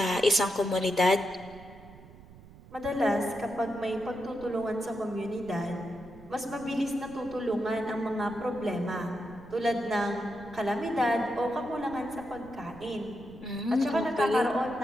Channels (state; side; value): noise; right; rumble, 20 dB below the sound